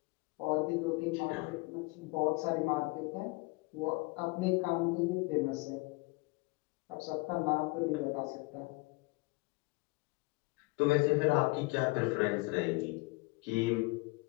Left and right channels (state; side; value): quieter; right; 25.8 dB